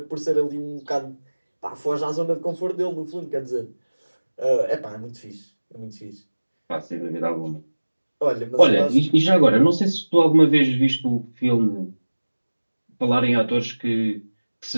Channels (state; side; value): inverted; both; correlation -1.00